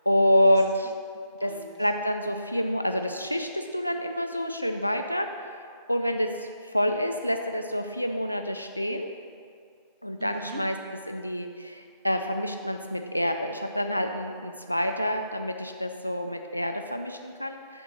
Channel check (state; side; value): inverted; both; correlation -0.86